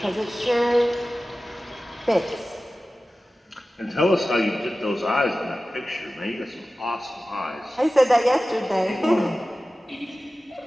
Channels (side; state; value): both; normal; correlation 0.96